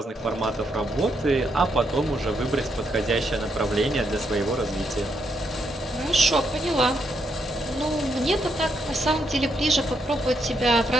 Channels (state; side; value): normal; both; correlation 0.78